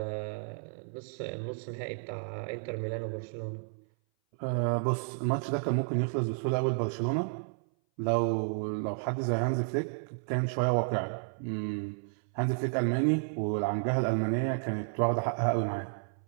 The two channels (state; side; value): silent; left; 57 dB below the other